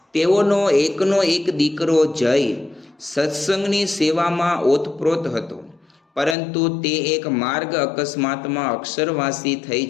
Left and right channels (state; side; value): drops out; right; at 6.4 s